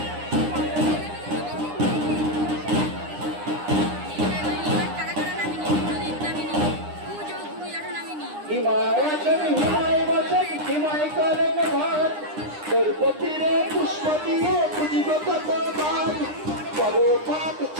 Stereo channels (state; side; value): late; left; 9.8 ms